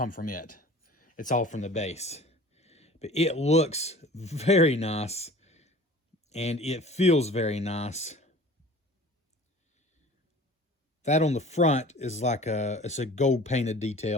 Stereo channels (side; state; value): both; normal; correlation 0.44